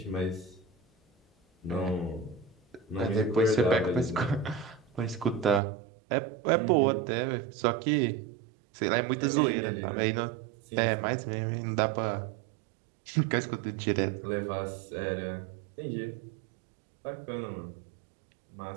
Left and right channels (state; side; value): drops out; left; at 5.6 s